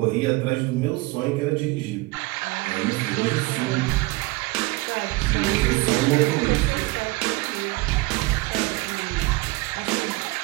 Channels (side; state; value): left; quieter; 22.5 dB